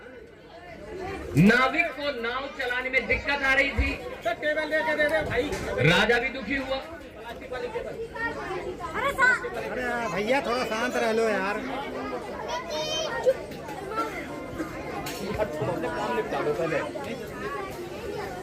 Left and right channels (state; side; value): identical; both; correlation 1.00